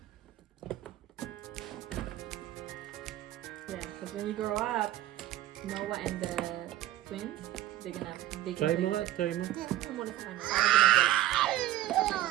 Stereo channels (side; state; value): left; quieter; 14.4 dB